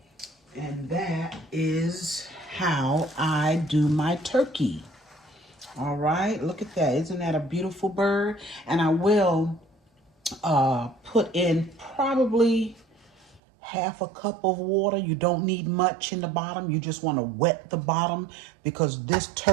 And that is how I do my turkey. All right, look at that. Isn't that a beautiful bird? And I will put in probably half a cup of water. You don't need much in the bottom. You just want to wet the bottom because this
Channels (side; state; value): left; drops out; at 13.4 s